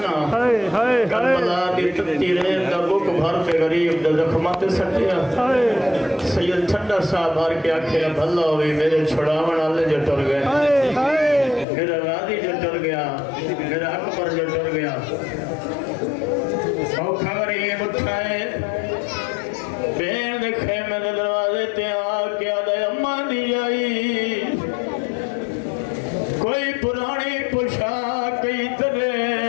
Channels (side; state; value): right; drops out; at 11.7 s